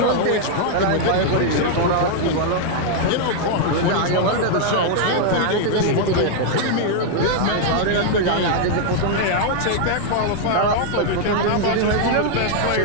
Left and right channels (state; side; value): different; both; correlation 0.00